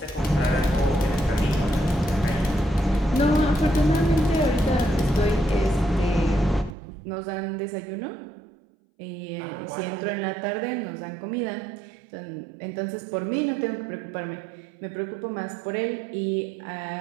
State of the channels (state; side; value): drops out; left; at 6.8 s